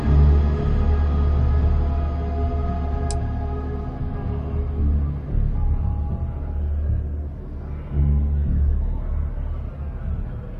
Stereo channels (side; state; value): both; identical; correlation 1.00